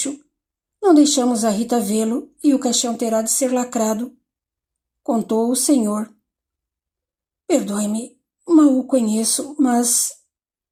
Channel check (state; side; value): identical; both; correlation 1.00